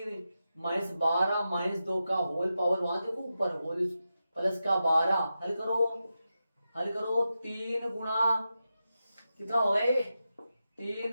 -12 -2 का होल पावर, वहां देखो ऊपर होल प्लस का 12, हल करो 3 गुणा कितना हो गए,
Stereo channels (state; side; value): inverted; both; correlation -0.90